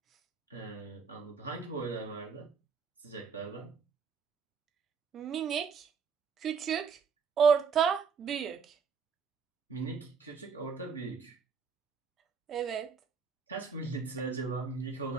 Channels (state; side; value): quieter; left; 5.9 dB